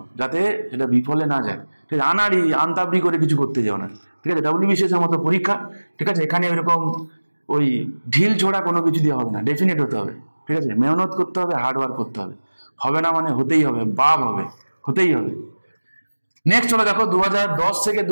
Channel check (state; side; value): inverted; both; correlation -1.00